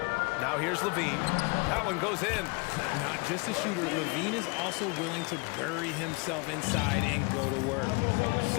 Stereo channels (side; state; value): right; quieter; 29.5 dB